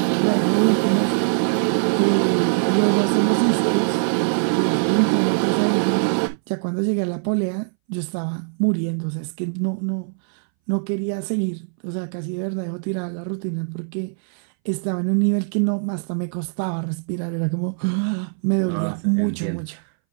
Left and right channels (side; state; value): left; silent; 62 dB below the other